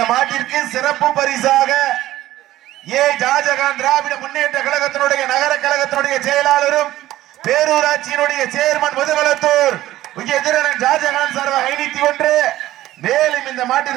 மாட்டிற்கு சிறப்பு பரிசாக ஷாஜகான் திராவிட முன்னேற்ற கழகத்தினுடைய நகர கழகத்தினுடைய செயலாளரும் பேரூராட்சியினுடைய சேர்மன் முதுகுளத்தூர் எதிரன் ஷாஜகான் சார்பாக 501. மேலும் இந்த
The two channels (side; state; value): left; quieter; 15.0 dB